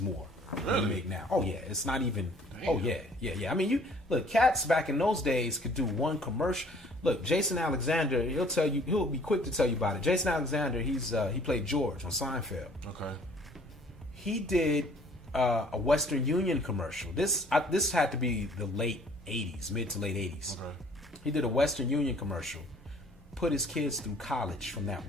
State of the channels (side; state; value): both; normal; correlation 0.56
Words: more than you make now. Oh yeah, it's not even. Damn. Oh yeah. I mean, you look, cats back in those days could do one commercial. Look, Jason Alexander, he'll be quick to tell you about it. Jason Alexander, he played George on Seinfeld. Okay. He did a Western Union commercial. This had to be the late 80s, mid to late 80s. Okay. He did a Western Union commercial. Put his kids through college from that